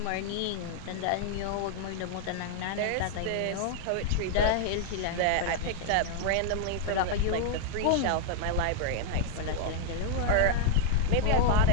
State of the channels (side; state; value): both; different; correlation -0.01